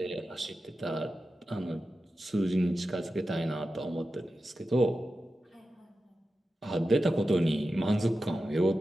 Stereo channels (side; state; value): both; normal; correlation 0.92